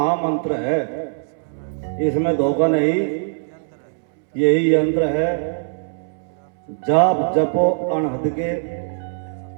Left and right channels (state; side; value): silent; left; 65 dB below the other